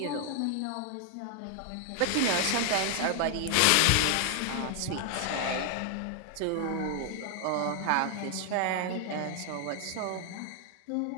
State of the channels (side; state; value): both; different; correlation 0.00